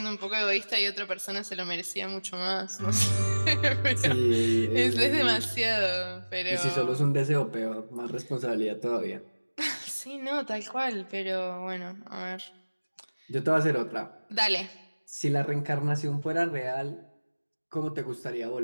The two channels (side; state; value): both; inverted; correlation -1.00